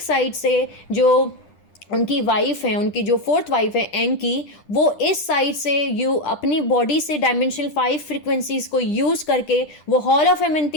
साइड से जो उनकी वाइफ है, उनकी जो फोर्थ वाइफ है एंकी, वो इस साइड से अपनी बॉडी से डायमेंशनल 5 फ्रिक्वेंसीज को यूज़ करके वो हॉल ऑफ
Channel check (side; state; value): right; late; 10 ms